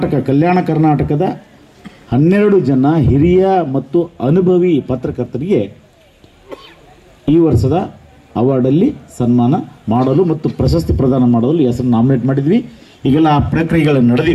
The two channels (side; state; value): both; identical; correlation 1.00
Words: ಕಲ್ಯಾಣ ಕರ್ನಾಟಕದ 12 ಜನ ಹಿರಿಯ ಮತ್ತು ಅನುಭವಿ ಪತ್ರಕರ್ತರಿಗೆ ಈ ವರ್ಷದ ಅವಾರ್ಡಲ್ಲಿ ಸನ್ಮಾನ ಮಾಡಲು ಮತ್ತು ಪ್ರಶಸ್ತಿ ಪ್ರದಾನ ಮಾಡಲು ಹೆಸರು ನಾಮಿನೇಟ್ ಮಾಡಿದ್ವಿ. ಈಗೆಲ್ಲ ಆ ಪ್ರಕ್ರಿಯೆಗಳು